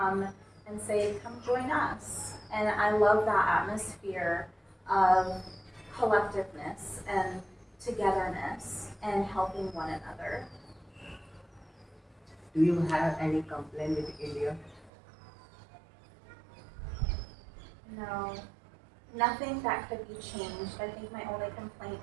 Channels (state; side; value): drops out; left; at 14.9 s